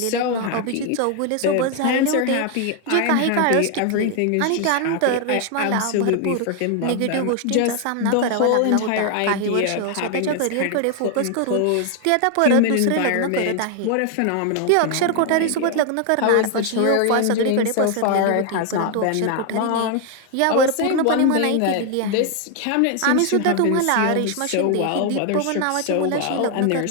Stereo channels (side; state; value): both; different; correlation 0.00